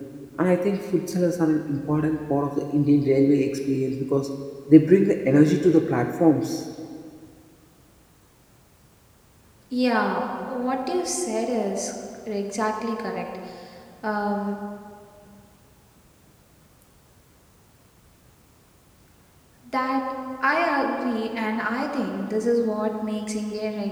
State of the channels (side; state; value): both; identical; correlation 1.00